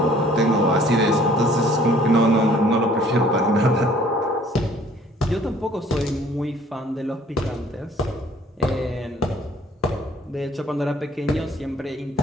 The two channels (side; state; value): both; normal; correlation 0.56